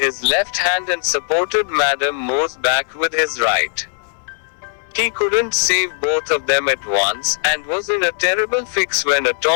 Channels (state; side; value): silent; right; digital silence